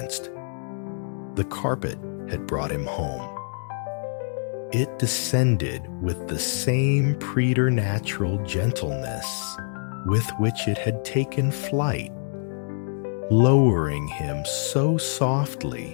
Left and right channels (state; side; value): silent; right; digital silence